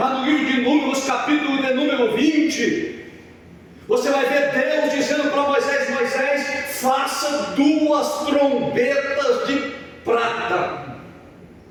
no livro de Números, capítulo de número 20, você vai ver Deus dizendo para Moisés: Moisés, faça 2 trombetas de prata.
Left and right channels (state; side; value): identical; both; correlation 1.00